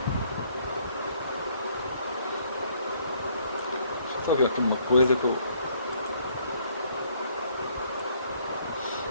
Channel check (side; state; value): both; inverted; correlation -0.65